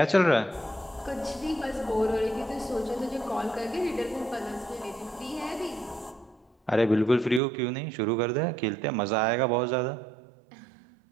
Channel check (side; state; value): left; drops out; at 7.4 s